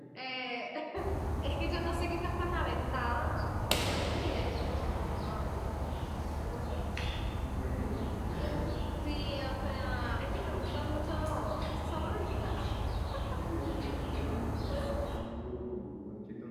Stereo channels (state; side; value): identical; both; correlation 1.00